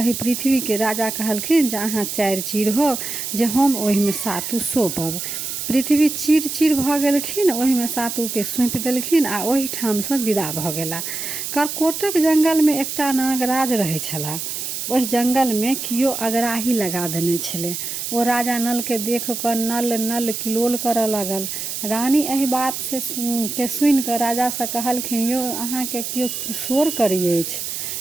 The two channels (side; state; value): right; noise; hiss, 5 dB below the sound